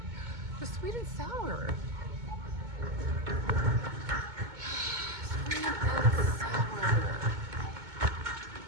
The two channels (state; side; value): late; left; 2.2 ms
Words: The sweet and sour. Sweet and sour.